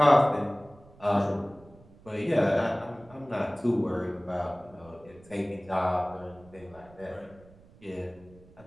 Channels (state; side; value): noise; right; rumble, 24 dB below the sound